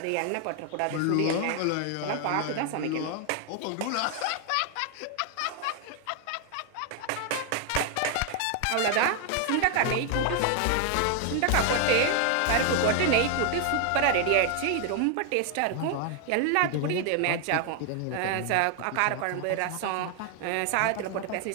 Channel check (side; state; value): both; different; correlation 0.00